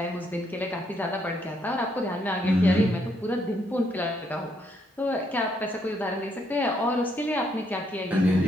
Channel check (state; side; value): normal; both; correlation 0.73